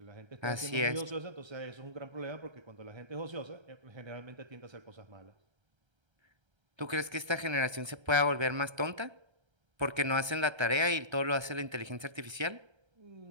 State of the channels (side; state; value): left; late; 1.3 ms